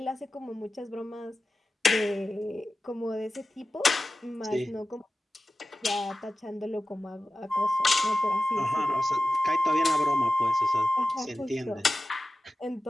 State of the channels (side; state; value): both; normal; correlation 0.94